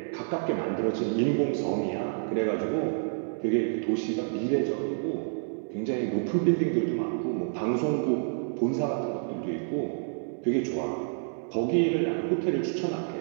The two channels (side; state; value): left; silent; 59 dB below the other